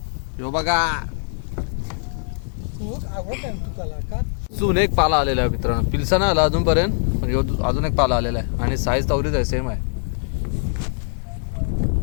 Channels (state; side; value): silent; right; digital silence